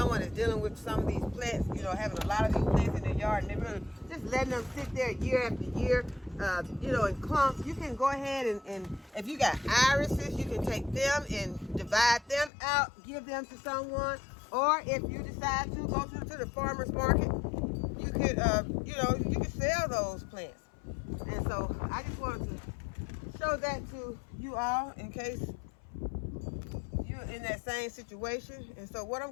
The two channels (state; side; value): drops out; right; at 12.5 s